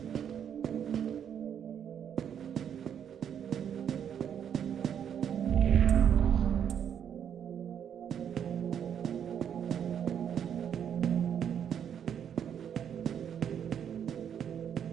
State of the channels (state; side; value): quieter; left; 8.7 dB